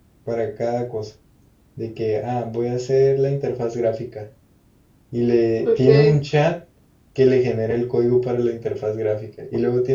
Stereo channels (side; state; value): both; identical; correlation 1.00